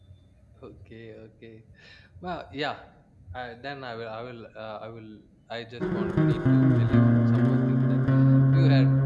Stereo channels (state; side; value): identical; both; correlation 1.00